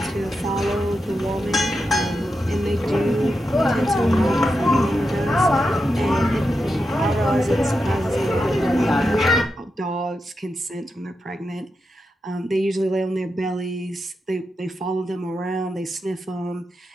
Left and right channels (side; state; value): both; normal; correlation 0.87